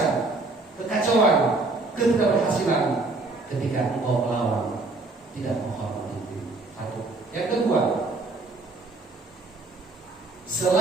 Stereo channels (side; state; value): left; quieter; 3.4 dB